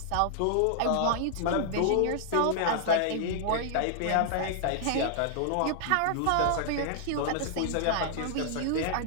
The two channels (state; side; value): different; both; correlation -0.01